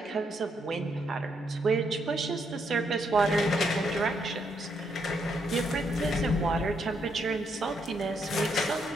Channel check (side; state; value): both; normal; correlation 0.76